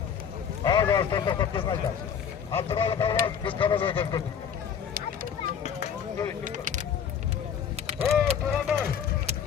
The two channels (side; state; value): right; quieter; 7.8 dB